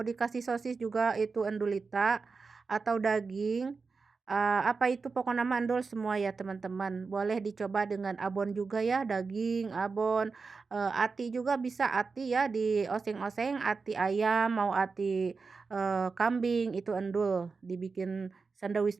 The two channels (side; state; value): left; quieter; 4.6 dB